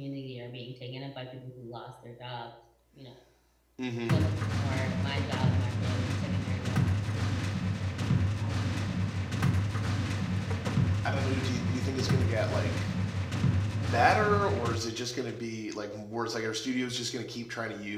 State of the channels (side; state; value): both; identical; correlation 1.00